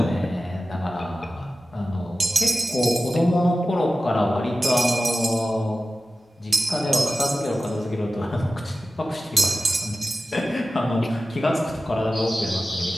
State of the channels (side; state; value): both; normal; correlation 0.94